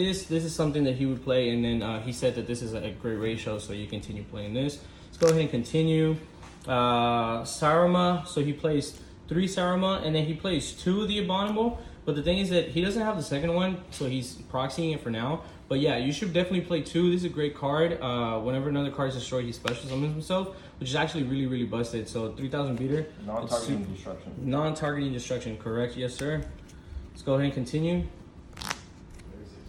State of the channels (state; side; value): identical; both; correlation 1.00